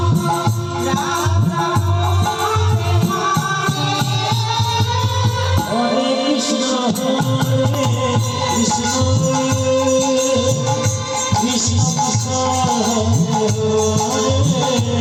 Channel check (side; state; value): both; identical; correlation 1.00